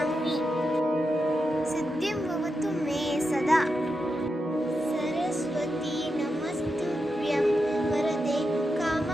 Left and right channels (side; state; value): both; normal; correlation 0.87